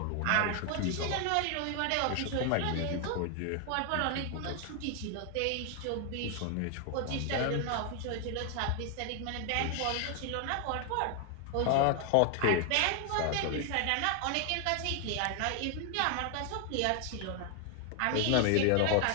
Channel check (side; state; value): both; different; correlation 0.00